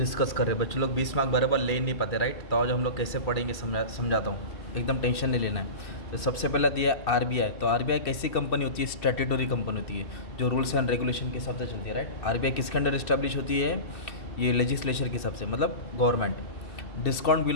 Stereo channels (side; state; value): right; late; 2.6 ms